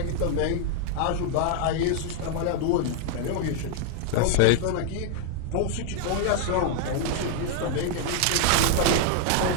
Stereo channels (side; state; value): both; different; correlation 0.00